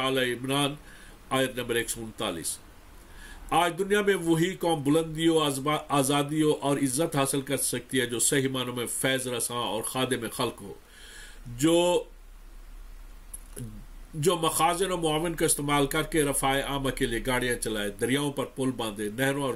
عمران آیت نمبر 139۔ آج دنیا میں وہی قوم بلندیوں، آزادیوں اور عزت حاصل کر سکتی ہے جو صحیح معنوں میں فیض رساں اور خادم خلق ہو، جو جو مخازن و معاون کا استعمال کر کے رفاع عامہ کے لیے گاڑیاں چلائے، دریاؤں پر پل باندھے، نہروں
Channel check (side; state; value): both; identical; correlation 1.00